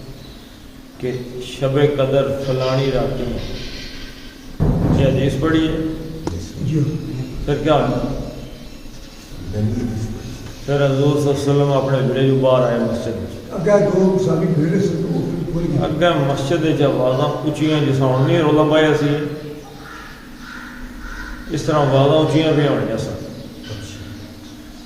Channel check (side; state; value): both; identical; correlation 1.00